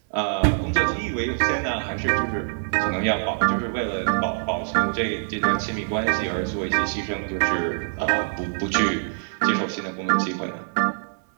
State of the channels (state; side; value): silent; left; digital silence